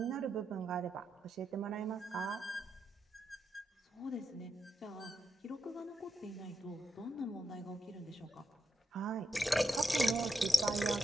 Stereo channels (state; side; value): normal; both; correlation 0.85